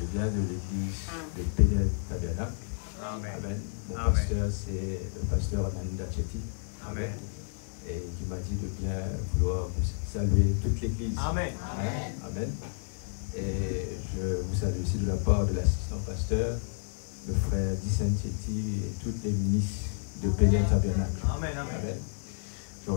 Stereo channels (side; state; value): right; silent; 56 dB below the other